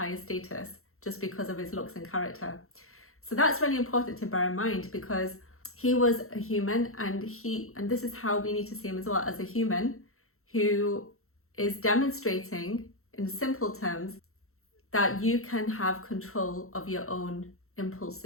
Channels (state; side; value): late; right; 0.63 ms